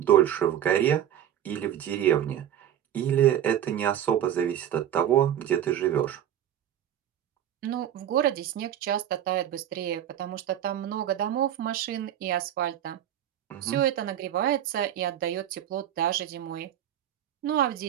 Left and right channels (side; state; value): left; quieter; 10.8 dB